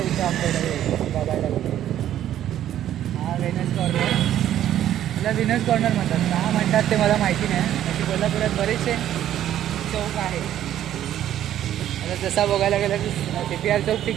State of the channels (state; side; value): quieter; left; 11.6 dB